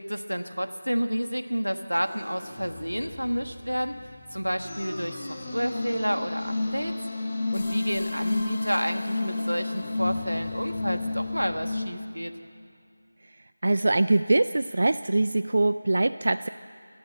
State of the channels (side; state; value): both; inverted; correlation -0.98